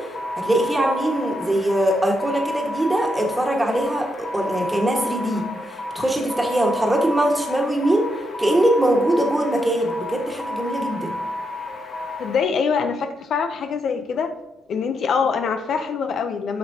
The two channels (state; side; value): normal; both; correlation 0.81